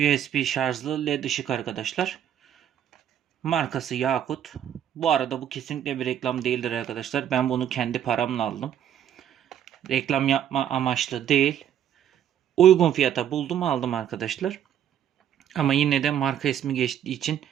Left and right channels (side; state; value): left; quieter; 10.0 dB